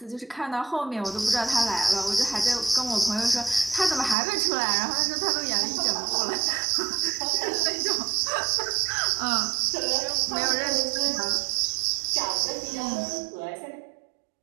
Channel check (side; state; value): left; drops out; at 4.2 s